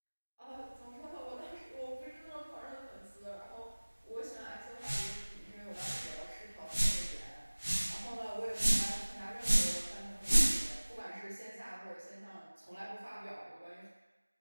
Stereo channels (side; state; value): both; inverted; correlation -1.00